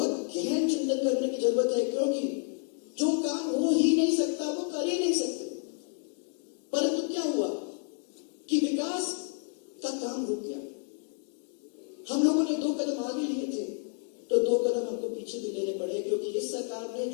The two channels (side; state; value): right; quieter; 37.7 dB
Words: गहन चिंतन करने की जरूरत है, क्योंकि जो काम हो ही नहीं सकता वो कर ही नहीं सकते। परंतु क्या हुआ कि विकास का काम रुक गया। हम लोगों ने 2 कदम आगे लिए थे तो 2 कदम हमको पीछे भी लेने पड़े, क्योंकि इस सरकार ने